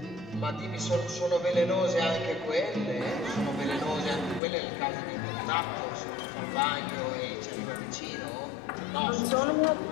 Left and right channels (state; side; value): drops out; right; at 4.4 s